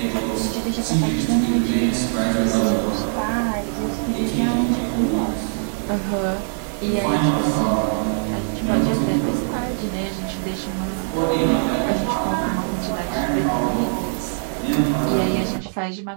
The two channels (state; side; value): silent; left; digital silence